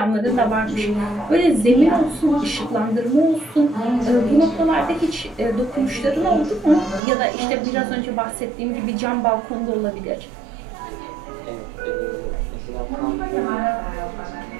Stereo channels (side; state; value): left; drops out; at 7.0 s